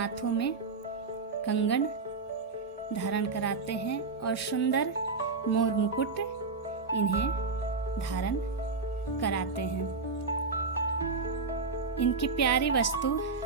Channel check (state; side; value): quieter; left; 4.4 dB